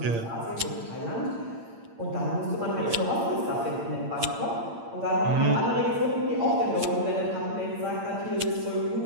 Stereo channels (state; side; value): late; left; 8.8 ms